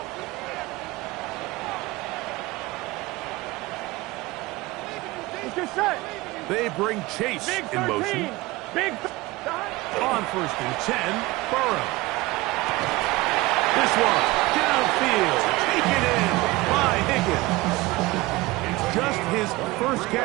They bring Chase in motion. On 1st and 10, Burrow. This one, downfield, taken in by Higgins. It's just his first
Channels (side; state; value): left; quieter; 20.7 dB